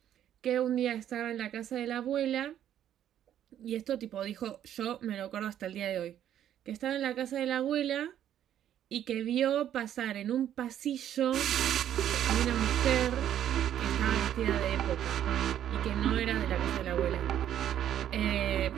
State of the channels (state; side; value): quieter; left; 10.7 dB